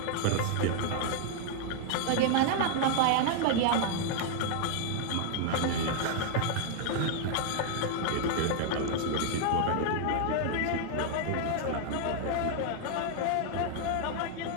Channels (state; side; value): different; both; correlation 0.00